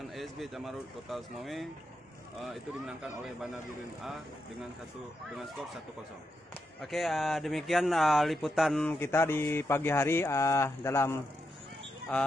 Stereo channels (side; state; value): both; normal; correlation 0.84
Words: ASB Camarut Kota Semawe, itu dimenangkan oleh Bana Birin A dengan skor 1-0. Oke, demikian liputan kita di pagi hari dalam